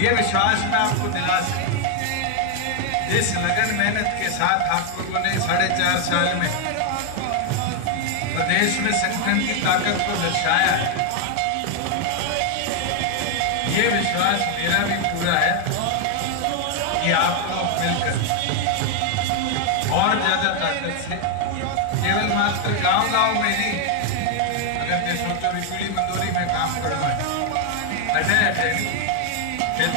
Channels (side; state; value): both; different; correlation 0.00